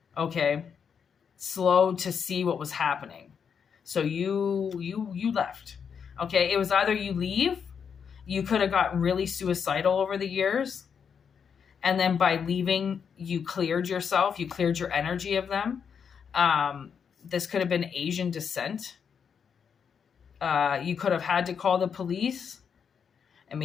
Okay. Slow to see what was happening. So you left. Okay. It was either you leave, you could have gotten really suicidal over the years. And then by leaving, you cleared yourself. You cleared your energy of them. This could have been Asian descent. You could have had to call the police and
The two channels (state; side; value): quieter; right; 6.9 dB